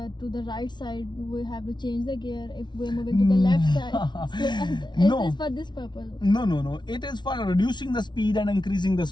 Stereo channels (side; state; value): right; late; 0.21 ms